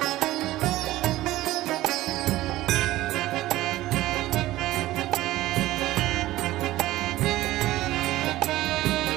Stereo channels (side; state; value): left; quieter; 16.3 dB